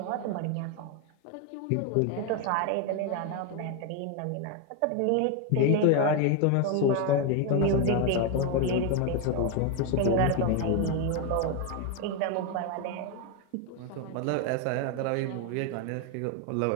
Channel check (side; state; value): both; different; correlation 0.01